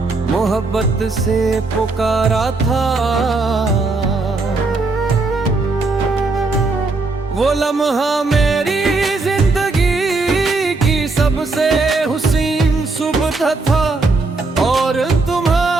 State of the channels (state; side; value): quieter; left; 3.6 dB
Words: मोहब्बत से पुकारा था, वो लम्हा मेरी जिंदगी की सबसे हुसीन सुबह था। और